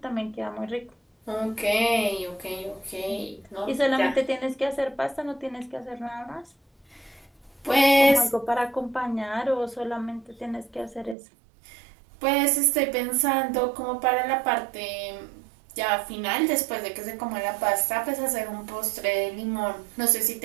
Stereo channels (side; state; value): left; drops out; at 11.2 s